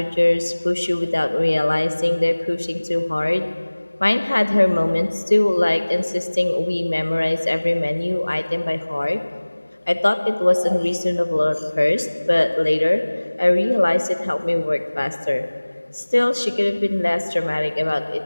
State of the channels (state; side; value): inverted; both; correlation -1.00